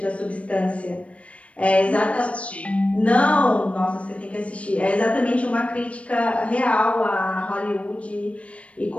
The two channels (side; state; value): right; late; 0.063 ms